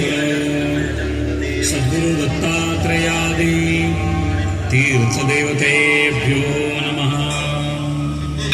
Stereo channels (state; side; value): identical; both; correlation 1.00